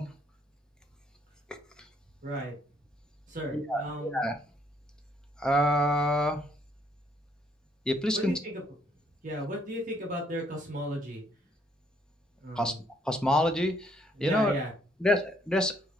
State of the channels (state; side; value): normal; both; correlation 0.67